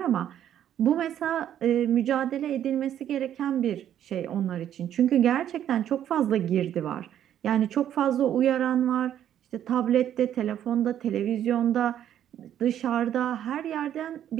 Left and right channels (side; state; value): left; quieter; 10.6 dB